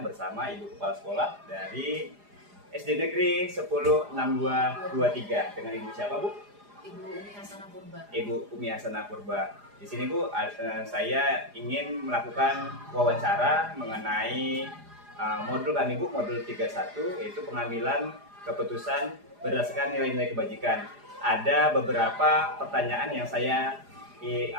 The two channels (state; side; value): late; left; 4.9 ms